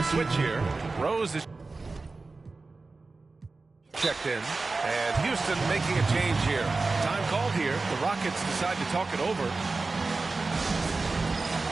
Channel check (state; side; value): quieter; left; 3.7 dB